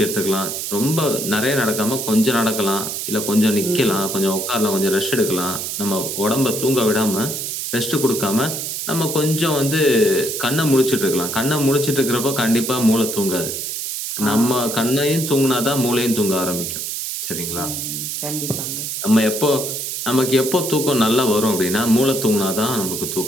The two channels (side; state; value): right; noise; hiss, 4 dB below the sound